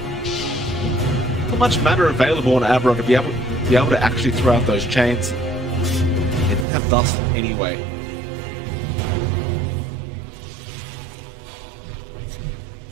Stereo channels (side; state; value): left; drops out; at 6.7 s